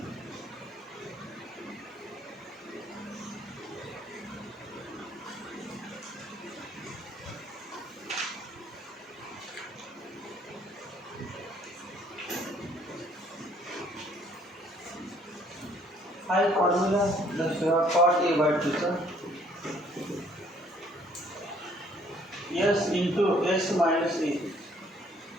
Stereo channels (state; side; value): normal; both; correlation 0.62